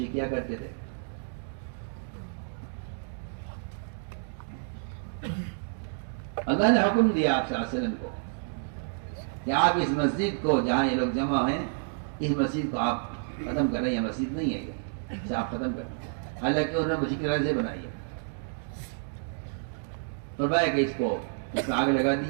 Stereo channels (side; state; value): left; silent; digital silence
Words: کیا کرتے تھے. اللہ نے حکم دیا آپ صلی اللہ علیہ وسلم کو کہ آپ اس مسجد کو جہاں یہ لوگ جمع ہیں اس مسجد کو آپ ختم کریں. یہ مسجد نہیں ہے، اسے آپ ختم کریں. حالانکہ انہوں نے مسجد کی طرح سے بنائی ہے. فرمایا کہ اس میں آگ لگا